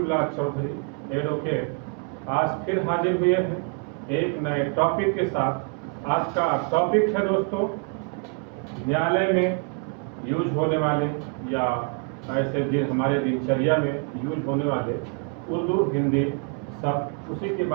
चौधरी एडवोकेट आज फिर हाजिर हुए हैं एक नए टॉपिक के साथ। आज का टॉपिक है दोस्तों, न्यायालय में यूज होने वाले या ऐसे दिन हमारे दिनचर्या में यूज होने वाले उर्दू हिंदी सब, उसी के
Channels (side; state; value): left; quieter; 36.5 dB